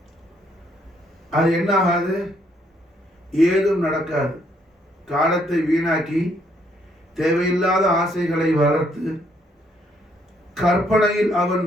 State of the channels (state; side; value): normal; both; correlation 0.70